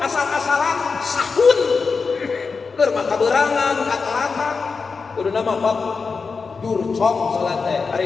sahun, bermakaberangan, kata-kata, udah nama bab dur cong salatnya,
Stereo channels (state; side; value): quieter; right; 4.8 dB